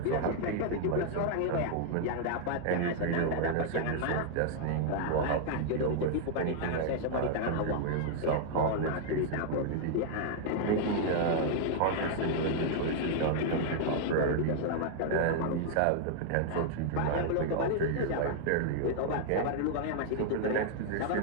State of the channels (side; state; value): both; different; correlation 0.00